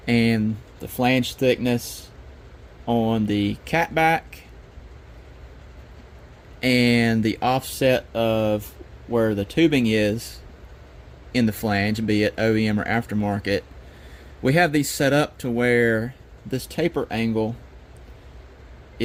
and the flange thickness on the catback, and the offset of where the tubing is in the flange, be it OEM or aftermarket, we have these set up to where this taper angle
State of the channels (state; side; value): identical; both; correlation 1.00